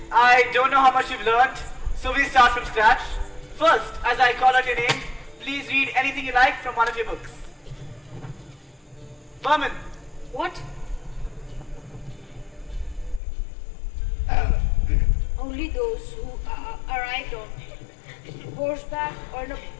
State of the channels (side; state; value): right; drops out; at 13.2 s